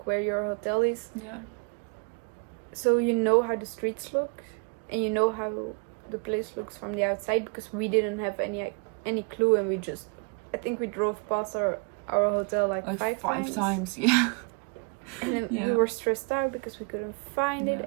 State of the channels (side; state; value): left; quieter; 34.5 dB